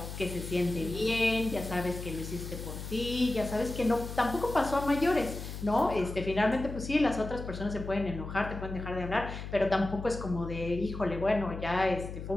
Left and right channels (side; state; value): left; noise; hum, 8 dB below the sound